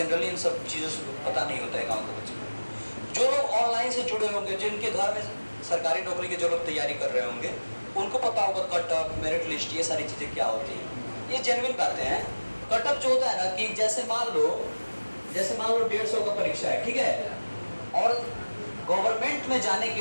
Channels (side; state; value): both; inverted; correlation -1.00